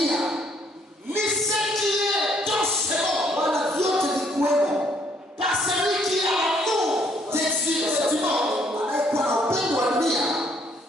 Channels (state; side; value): normal; both; correlation 0.67